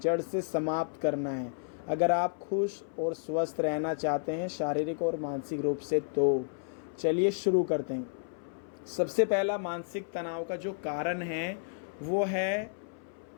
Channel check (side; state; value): right; silent; 57 dB below the other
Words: से समाप्त करना है अगर आप खुश और स्वस्थ रहना चाहते हैं शारीरिक और मानसिक रूप से। तो चलिए शुरू करते हैं। सबसे पहला मानसिक तनाव का जो कारण है वो है